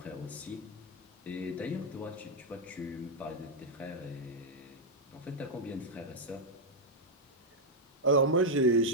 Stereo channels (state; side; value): normal; both; correlation -0.02